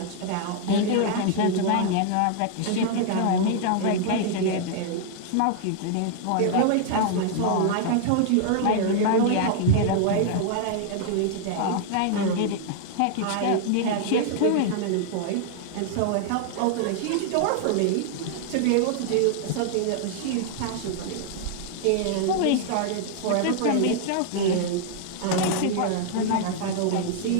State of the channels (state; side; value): different; both; correlation -0.01